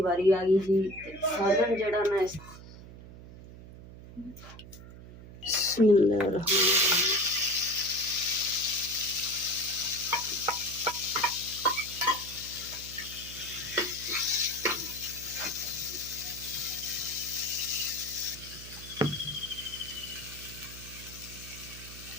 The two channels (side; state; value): right; noise; hum, 16 dB below the sound